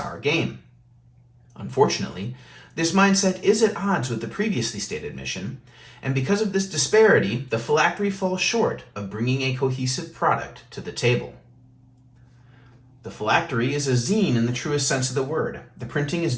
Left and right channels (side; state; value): both; identical; correlation 1.00